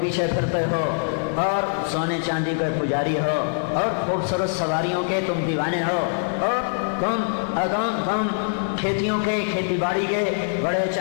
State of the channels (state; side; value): silent; right; digital silence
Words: پیچھے پھرتے ہو، اور سونے چاندی کے پجاری ہو، اور خوبصورت سواریوں کے تم دیوانے ہو، اور تم کھیتیوں کے، کھیتی باڑی کے بڑے